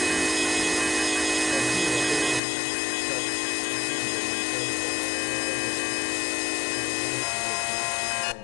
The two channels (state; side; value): drops out; right; at 2.4 s